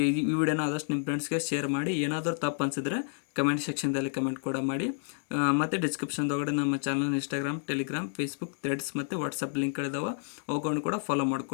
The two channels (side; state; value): right; silent; digital silence